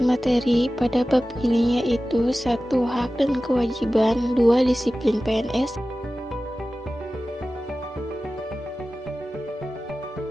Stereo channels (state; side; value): normal; both; correlation 0.95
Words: materi pada bab ini yaitu 1. Hak dan kewajiban, 2. Disiplin PNS,